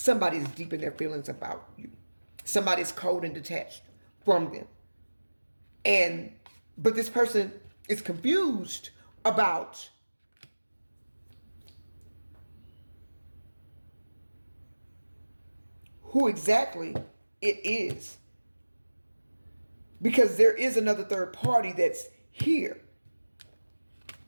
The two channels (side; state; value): both; inverted; correlation -1.00